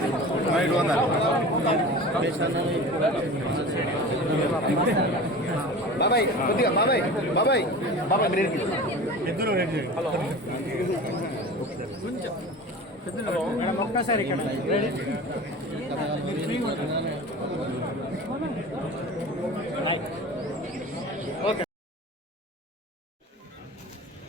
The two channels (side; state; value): both; normal; correlation 0.35